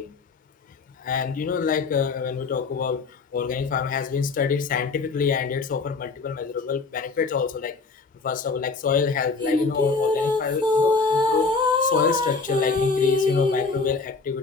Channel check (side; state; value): right; quieter; 4.4 dB